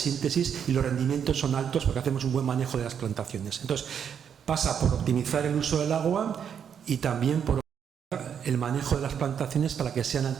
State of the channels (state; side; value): quieter; left; 7.9 dB